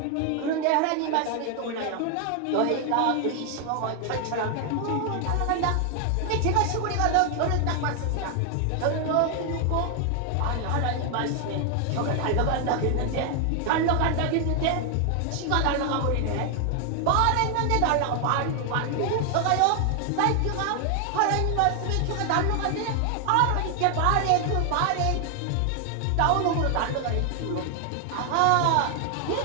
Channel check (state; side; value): different; both; correlation 0.00